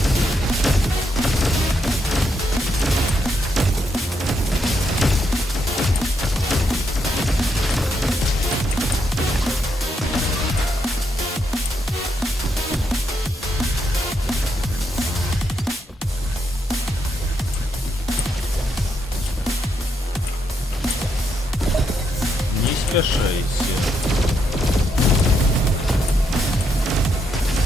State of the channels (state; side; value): normal; both; correlation 0.79